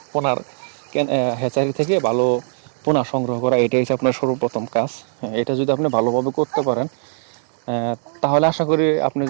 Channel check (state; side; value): silent; left; digital silence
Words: পোনার হ্যাচারি থেকে ভালো পোনা সংগ্রহ করা। এটাই হচ্ছে আপনার সর্বপ্রথম কাজ। এটা যদি আপনি ভালোভাবে করতে পারেন, তাহলে আশা করি আপনি